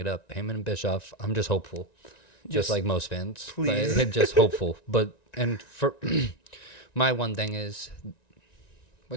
up. Heyman and Bischoff, I'm just hopeful. Just like most fans. Please. Just hopeful. And for my one thing is, we're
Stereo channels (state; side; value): late; right; 1.9 ms